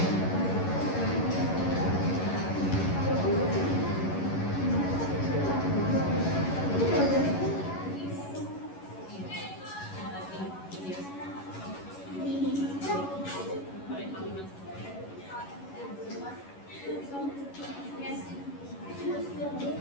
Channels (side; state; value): right; late; 11 ms